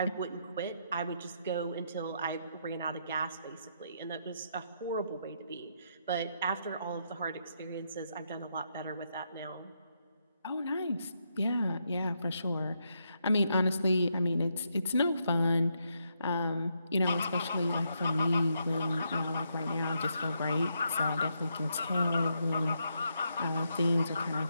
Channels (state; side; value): inverted; both; correlation -0.79